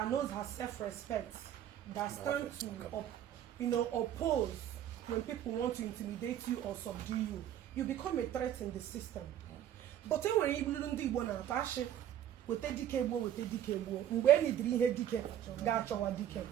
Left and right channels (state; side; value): quieter; left; 11.0 dB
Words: knows her self-respect, that stands to oppose when people want to intimidate you or subdue you, you become a threat in the system. But when you do Igbo na atashi with